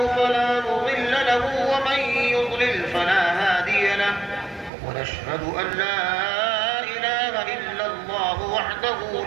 فلا مضل له ومن يضلل فلا هادي له ونشهد أن لا إله إلا الله وحده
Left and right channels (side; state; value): left; drops out; at 4.7 s